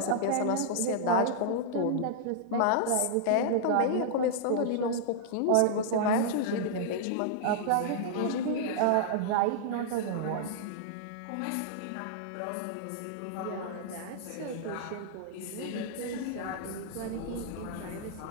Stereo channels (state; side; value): different; both; correlation -0.01